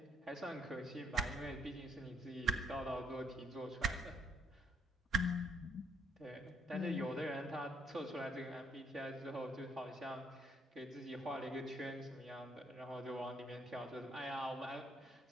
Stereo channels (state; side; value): normal; both; correlation 0.71